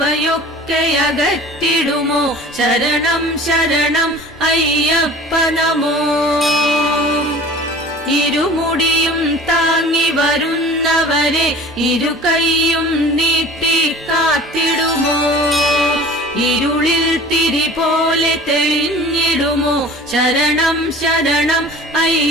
അകറ്റിടുമോ ശരണം ശരണം അയ്യപ്പ നമോ ഇരുമുടിയും താങ്ങി വരുന്നവരെ ഇരുകൈയും നീട്ടി കാത്തിടുമോ ഇരുളിൽ തിരി പോലെ തെളിഞ്ഞിടുമോ ശരണം ശരണം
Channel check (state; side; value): normal; both; correlation 0.43